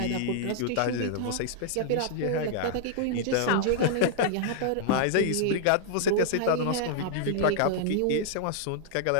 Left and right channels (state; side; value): different; both; correlation -0.01